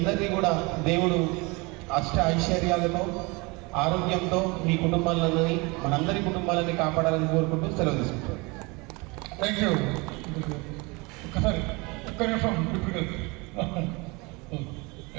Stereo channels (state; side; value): quieter; left; 26.7 dB